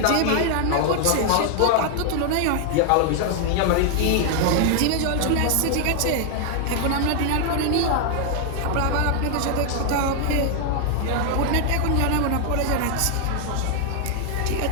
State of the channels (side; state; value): both; different; correlation 0.00